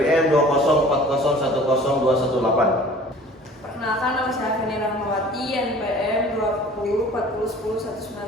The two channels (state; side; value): normal; both; correlation 0.47